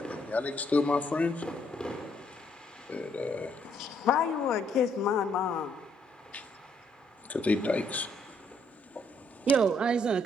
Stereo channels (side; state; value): both; normal; correlation 0.70